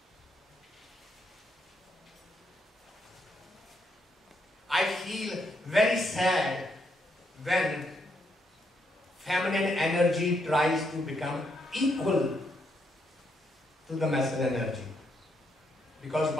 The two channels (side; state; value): both; normal; correlation 0.77